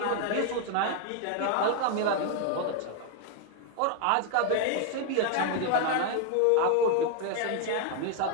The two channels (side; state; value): both; different; correlation 0.01